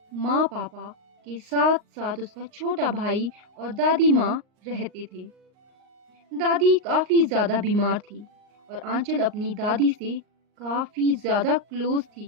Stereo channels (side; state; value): left; late; 38 ms